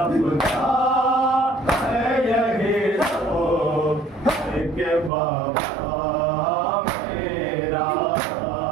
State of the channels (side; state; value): left; drops out; at 5.1 s